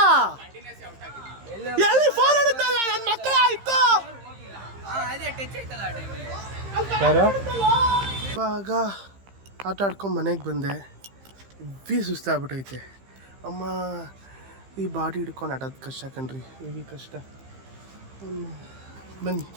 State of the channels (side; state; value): left; late; 15 ms